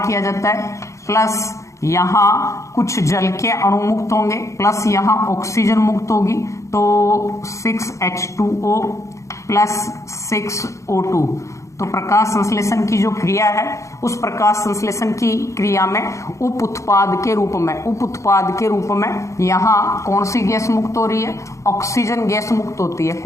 जाता है। प्लस यहाँ कुछ जल के अणु मुक्त होंगे, प्लस यहाँ ऑक्सीजन मुक्त होगी, तो 6H2O प्लस 6O2। तो प्रकाश संश्लेषण की जो क्रिया है, उस प्रकाश संश्लेषण की क्रिया में उप उत्पाद के रूप में यहाँ कौन सी गैस मुक्त हो रही है? ऑक्सीजन गैस मुक्त होती है।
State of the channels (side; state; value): right; late; 0.15 ms